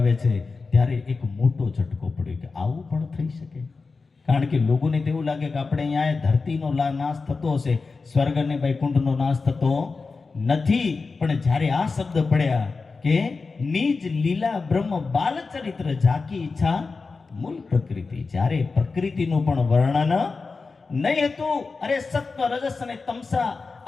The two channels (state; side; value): quieter; right; 4.3 dB